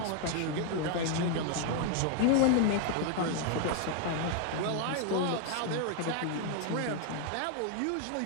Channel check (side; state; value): both; different; correlation 0.00